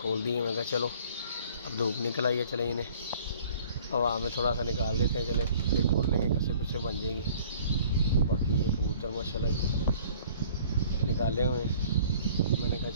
दिए। मैं कहा चलो अब धूप निकल आई है, चले इन्हें हवा में थोड़ा सा निकाल देते हैं, चले फिर खोल लेंगे, कैसे कुछ बन जाएंगी। बाकी ये कबूतर माशाल्लाह निकाले हुए हैं। मैंने कहा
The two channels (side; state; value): both; inverted; correlation -0.52